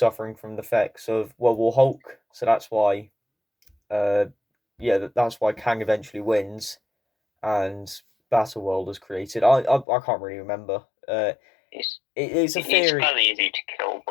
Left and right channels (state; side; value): drops out; right; at 9.9 s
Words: from the effects of World War Hulk. So that's why, that's why Kang eventually wins, and Battleworld is created. I can't really remember. It's a theory. He's fairly easy to kill,